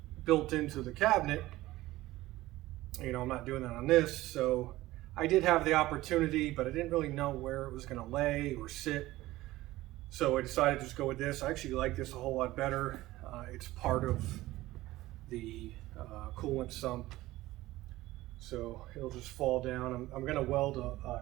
built into the cabinet, you know, I'm not doing that on this. So I did have the opportunity, but I didn't really know where it was going to lay or sit. So I decided to just go with this. I actually like this a whole lot better. It's part of the coolant sump, so it'll just fall down. I'm going to weld a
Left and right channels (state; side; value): quieter; left; 17.3 dB